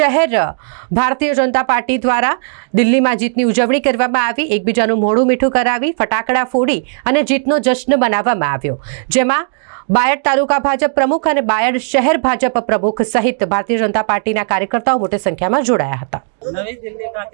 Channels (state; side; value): silent; left; digital silence